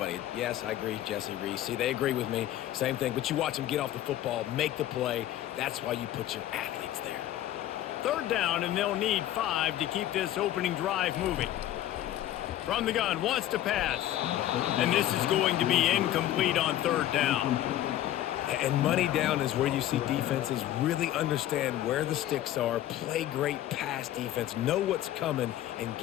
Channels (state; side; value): quieter; right; 13.0 dB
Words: Yes, I agree, Jesse, Reese. See, they agree with me. Same thing. But you watch them get off the football, make the play. That's why you put your athletes there. Third down, and they'll need 5 to keep this opening drive moving. From the gun, wants to pass. And this is going to be incomplete on third down. And money down is where you see defenses really understand where the sticks are, play great pass defense, know what's coming, and